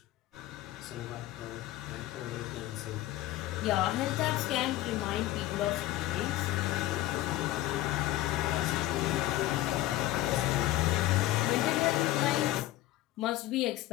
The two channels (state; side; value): quieter; right; 15.8 dB